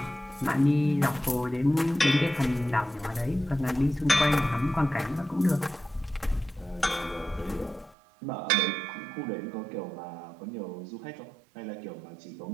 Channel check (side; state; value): left; drops out; at 8.0 s